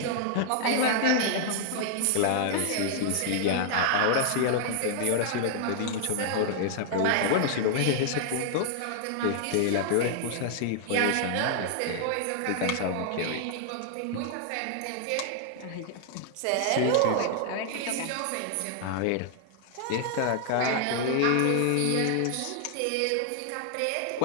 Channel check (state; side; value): different; both; correlation 0.00